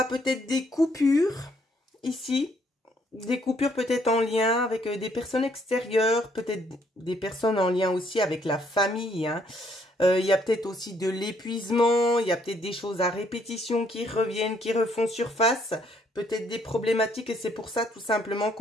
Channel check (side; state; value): both; normal; correlation 0.68